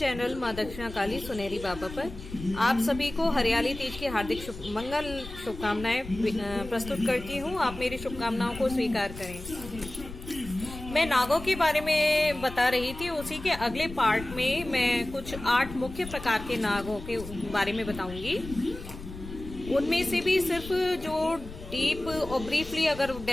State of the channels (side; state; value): left; noise; rumble, 13 dB below the sound